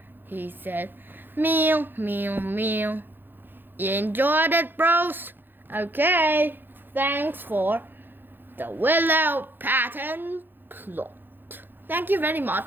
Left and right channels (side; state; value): left; late; 0.096 ms